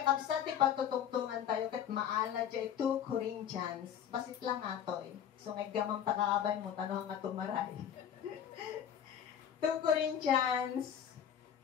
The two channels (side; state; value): right; quieter; 9.3 dB